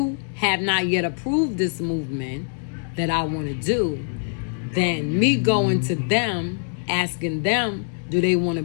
have not yet approved this movement that I want to do, then me going to them, asking them, do they want to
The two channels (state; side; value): silent; right; digital silence